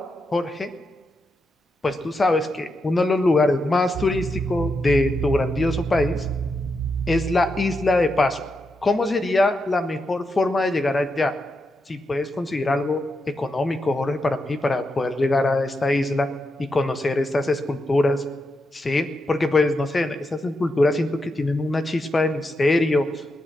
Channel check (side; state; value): both; normal; correlation 0.85